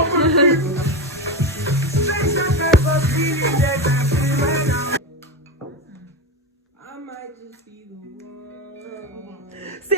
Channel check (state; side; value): normal; both; correlation 0.18